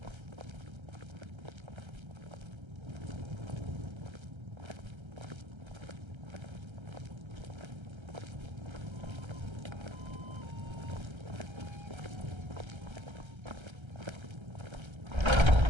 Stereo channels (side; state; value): left; late; 1.3 ms